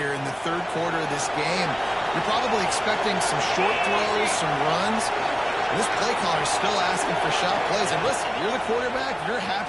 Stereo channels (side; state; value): both; identical; correlation 1.00